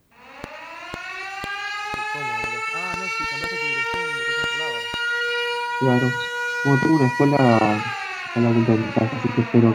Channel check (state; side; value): identical; both; correlation 1.00